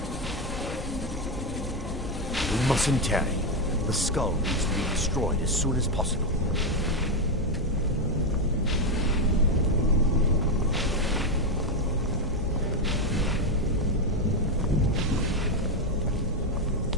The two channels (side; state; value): both; normal; correlation 0.07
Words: We mustn't tarry. The skull needs to be destroyed as soon as possible.